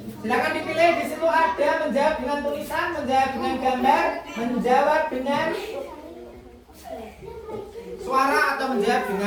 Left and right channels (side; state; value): both; identical; correlation 1.00